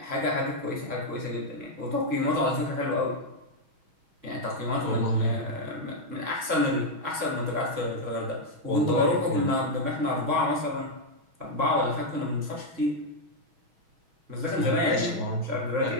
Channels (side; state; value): left; late; 6.3 ms